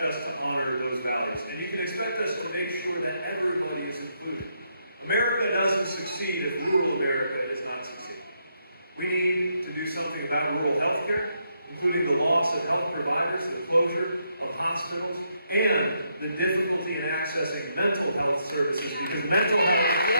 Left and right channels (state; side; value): inverted; both; correlation -0.78